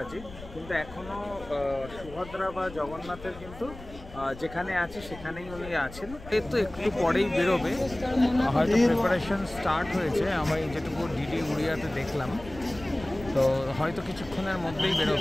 কিন্তু এখনও সুভদ্রা বা জগন্নাথের কিন্তু যেখানে আছে সেখানেই উনি আছেন। এর তো একটু পরেই বেরোবে, হয়তো প্রিপারেশন স্টার্ট হয়েছে, আমি যেটুকু ডিডি উড়িয়াতে দেখলাম। তো হয়তো কিছুক্ষণের মধ্যেই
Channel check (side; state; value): left; noise; rumble, 16 dB below the sound